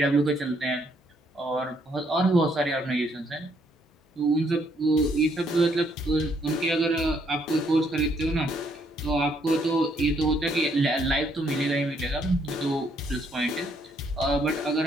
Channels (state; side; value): normal; both; correlation 0.70